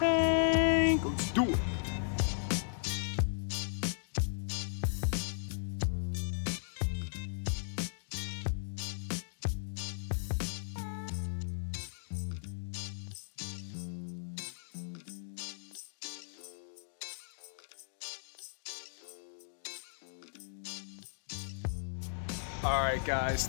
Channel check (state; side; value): silent; right; digital silence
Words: Let's do it. Alright guys,